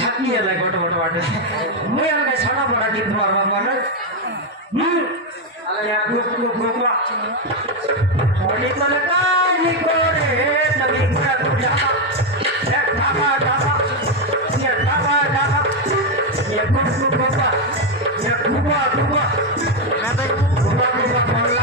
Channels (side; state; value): both; normal; correlation 0.05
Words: है गोट गोट बाटे मुई अलग छड़ा बड़ा गीत मारवा माने अरे या गुप गुप गुपा थोड़ी तो कानी कोरे तभी पूरा गुजा ये ढाबा ढाबा ये ढाबा ढाबा ये गुप गुप गुपा ये गुपा गुपा खाते गुपा गुपा